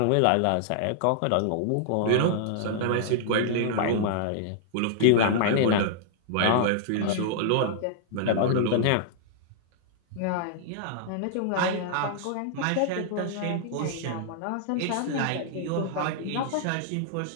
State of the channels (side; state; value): both; different; correlation -0.01